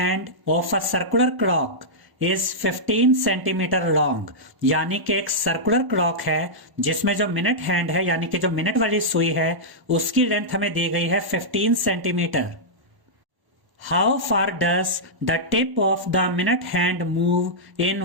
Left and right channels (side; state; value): left; late; 1.0 ms